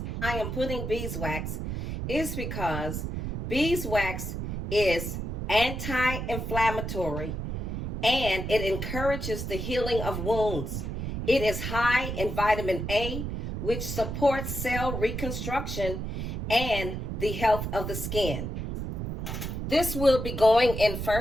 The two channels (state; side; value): noise; right; rumble, 4 dB below the sound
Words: I am putting beeswax is because beeswax is anti-inflammatory and it encourages the healing of wounds. It is high in vitamin A, which supports cell reconstruction and the health of the skin. This will be going in